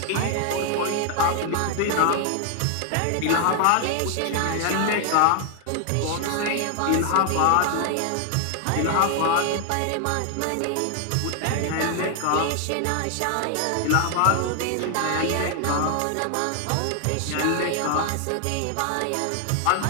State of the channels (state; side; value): different; both; correlation 0.00